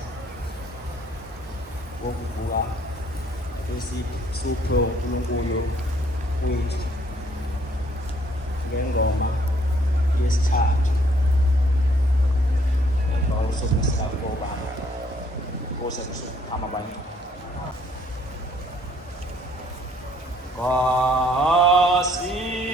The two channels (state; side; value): normal; both; correlation 0.64